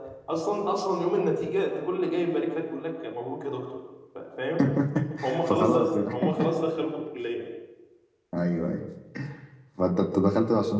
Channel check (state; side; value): identical; both; correlation 1.00